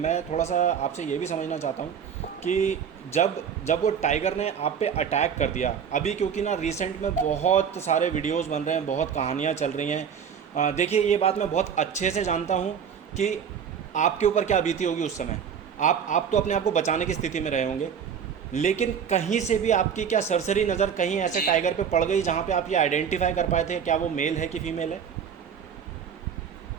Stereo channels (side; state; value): left; quieter; 7.6 dB